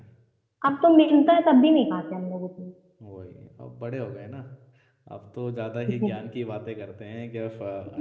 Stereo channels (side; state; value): both; identical; correlation 1.00